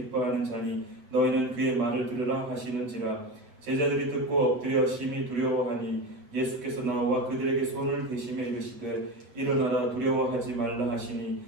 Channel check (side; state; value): left; late; 8.3 ms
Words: 자니 너희는 그의 말을 들으라 하시는지라. 제자들이 듣고 엎드려 심히 두려워하니 예수께서 나와 그들에게 손을 대시며 이르시되 일어나라 두려워하지 말라 하시니